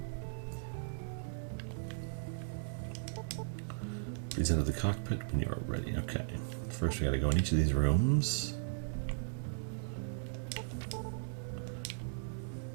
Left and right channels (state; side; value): silent; left; digital silence